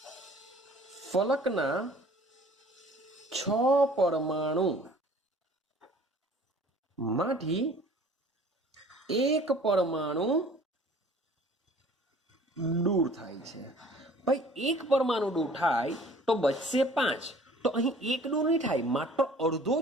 ફલકના 6 પરમાણુ માંથી એક પરમાણુ દૂર થાય છે। ભાઈ એક પરમાણુ દૂર થાય તો બચશે 5, તો અહીં એક દૂર નહીં થાય, માત્ર અડધો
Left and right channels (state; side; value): normal; both; correlation 0.50